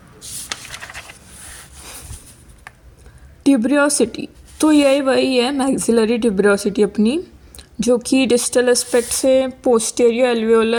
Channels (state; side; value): identical; both; correlation 1.00